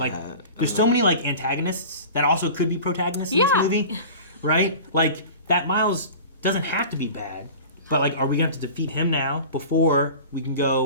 there's so many like antagonists that also could be protagonists in Yeah. this movie, right? Like that Miles doesn't have to be bad, but like, are we gonna have to defeat him now before we can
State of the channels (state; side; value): inverted; both; correlation -0.37